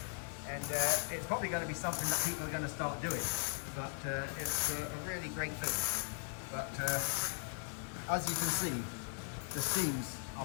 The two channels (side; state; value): right; silent; 52 dB below the other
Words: And it's probably going to be something that people are going to start doing, but it's a really great thing. But as you can see, the seams